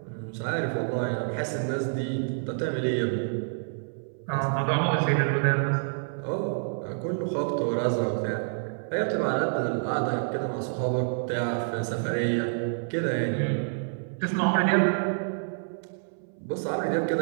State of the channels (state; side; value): silent; left; 59 dB below the other